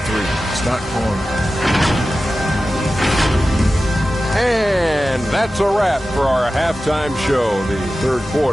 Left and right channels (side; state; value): both; normal; correlation 0.94